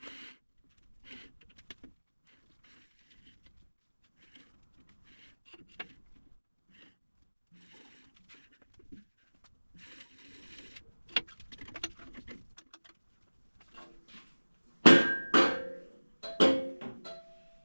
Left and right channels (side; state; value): both; inverted; correlation -1.00